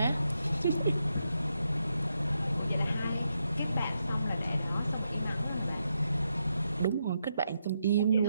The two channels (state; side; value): inverted; both; correlation -0.83